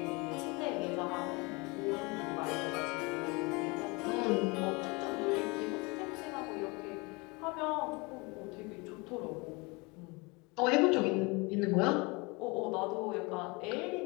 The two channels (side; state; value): right; quieter; 27.0 dB